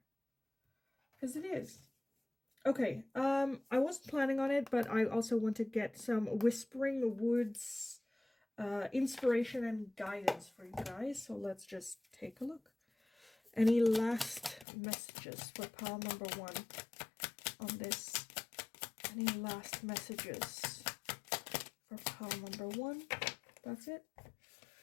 Because it is. Okay, I wasn't planning on it, but I also want to get some Whispering Woods inspiration and guidance for you guys. So let's just take a look. Any last messages for pile number 1 on this? Any last messages for pile number 1? That's it.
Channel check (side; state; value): right; drops out; at 14.7 s